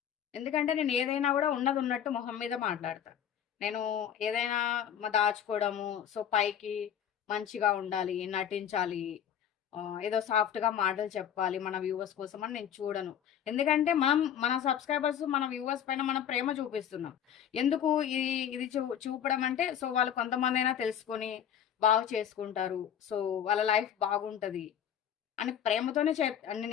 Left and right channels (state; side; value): quieter; right; 9.3 dB